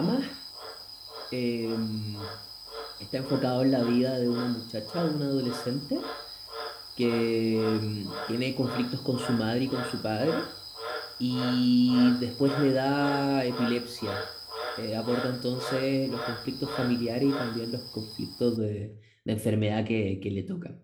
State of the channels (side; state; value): both; identical; correlation 1.00